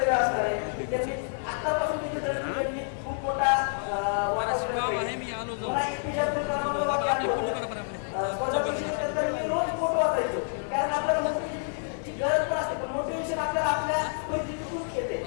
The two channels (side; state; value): right; silent; digital silence